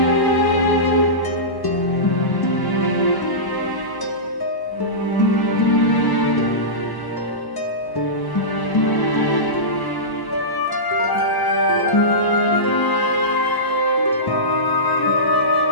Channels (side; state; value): right; late; 1.0 ms